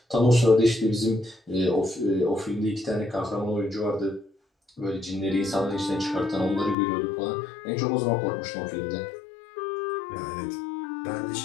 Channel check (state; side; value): drops out; right; at 6.8 s